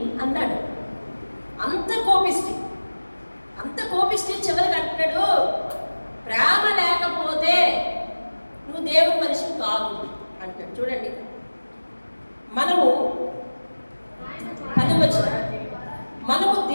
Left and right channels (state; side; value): inverted; both; correlation -1.00